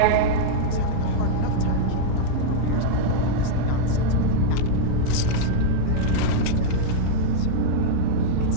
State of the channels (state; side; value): different; both; correlation -0.03